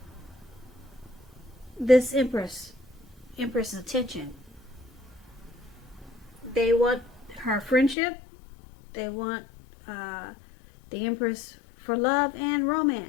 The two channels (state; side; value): drops out; right; at 8.0 s